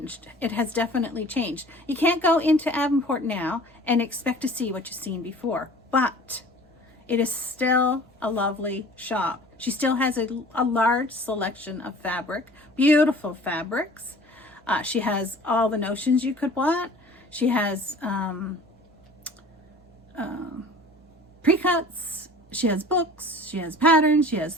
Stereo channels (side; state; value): both; normal; correlation 0.45